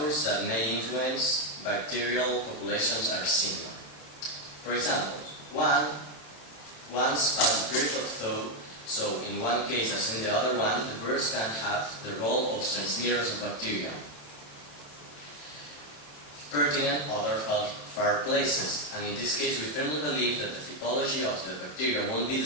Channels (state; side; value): late; right; 27 ms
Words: that may influence bacterial populations are similar. For example, once past the period of thaw, so in one case as in the other one, the birds can have the role of transmitters of bacteria. Pertinent other far places, and in this case we firmly believe that the typology of the bacteria won't be the